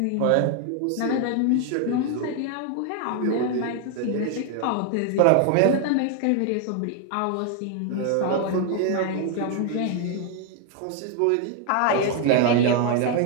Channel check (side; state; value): both; different; correlation 0.00